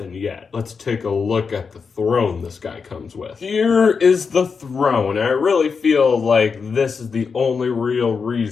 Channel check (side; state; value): right; quieter; 5.5 dB